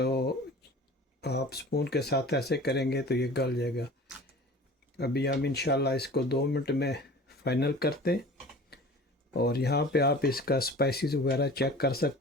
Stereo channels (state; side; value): normal; both; correlation 0.42